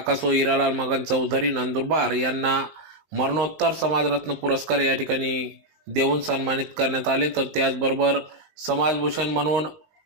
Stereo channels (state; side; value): late; left; 19 ms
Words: हिरालाल मगन चौधरी नंदुरबार यांना मरणोत्तर समाजरत्न पुरस्कार या ठिकाणी देऊन सन्मानित करण्यात आले। तर त्याचबरोबर समाजभूषण म्हणून